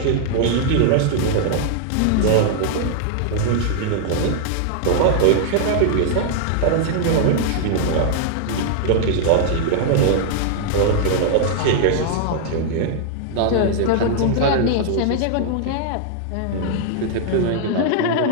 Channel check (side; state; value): both; different; correlation -0.01